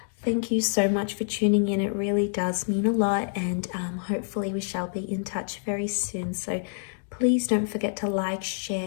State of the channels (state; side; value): silent; right; digital silence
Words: Thank you so much for tuning in. It really does mean a lot, and hopefully we shall be in touch very soon. So please don't forget to like,